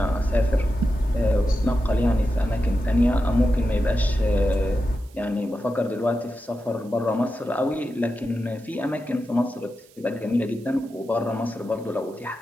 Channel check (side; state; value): right; noise; hiss, 28 dB below the sound